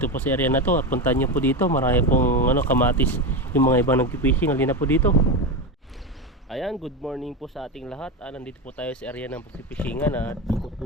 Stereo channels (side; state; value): both; normal; correlation 0.17